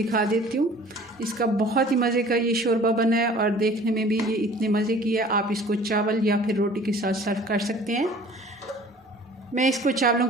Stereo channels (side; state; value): both; normal; correlation 0.49